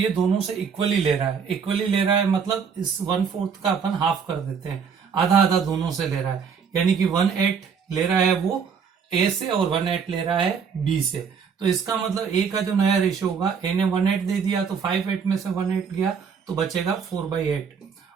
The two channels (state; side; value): quieter; left; 6.4 dB